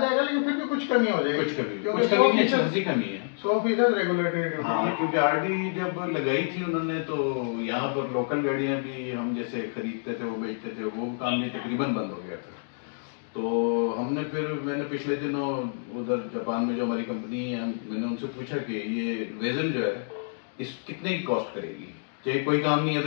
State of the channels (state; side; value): silent; right; digital silence